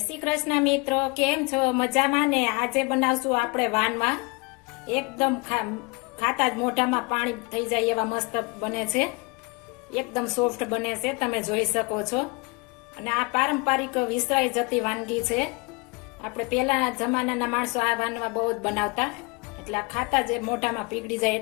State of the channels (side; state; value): right; quieter; 28.8 dB